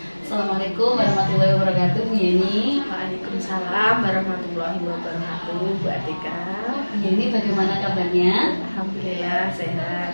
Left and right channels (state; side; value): inverted; both; correlation -1.00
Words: Assalamualaikum warahmatullahi wabarakatuh, Bu Yeni. Waalaikumsalam warahmatullahi wabarakatuh, Bu Atika. Bu Yeni, bagaimana kabarnya? Alhamdulillah